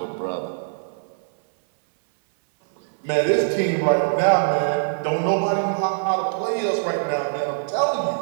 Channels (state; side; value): silent; left; 61 dB below the other